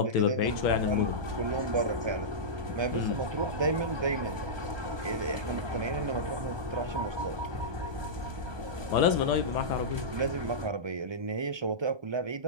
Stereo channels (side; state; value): left; late; 1.2 ms